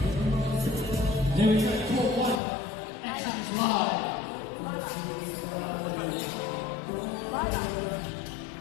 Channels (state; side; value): drops out; right; at 2.4 s